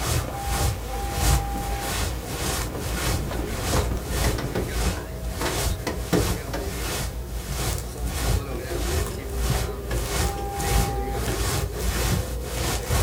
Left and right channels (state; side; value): identical; both; correlation 1.00